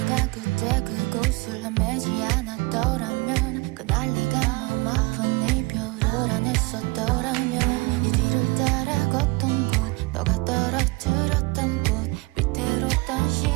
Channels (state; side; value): quieter; left; 25.3 dB